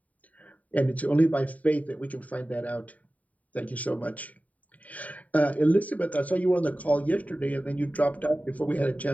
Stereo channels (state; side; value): late; right; 0.071 ms